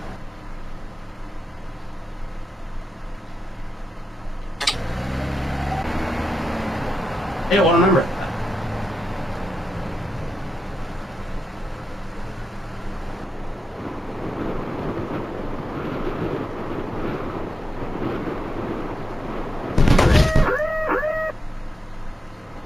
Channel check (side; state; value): both; normal; correlation 0.88